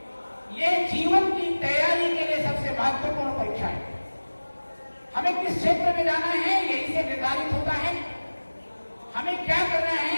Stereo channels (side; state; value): both; inverted; correlation -1.00